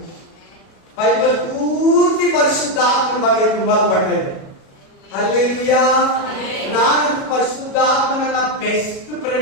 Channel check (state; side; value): late; right; 37 ms